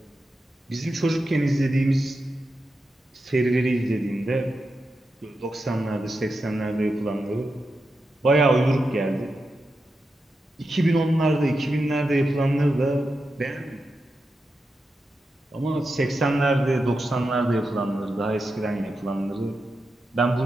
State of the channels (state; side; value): normal; both; correlation 0.89